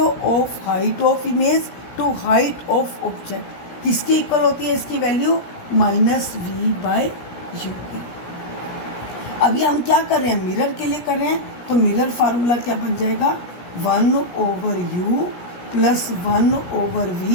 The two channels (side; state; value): right; late; 17 ms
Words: of height of image to height of object. किसके इक्वल होती है इसकी वैल्यू, -v/u। अभी हम क्या कर रहे हैं, मिरर के लिए कर रहे हैं, तो मिरर फार्मूला क्या बन जाएगा, 1/u +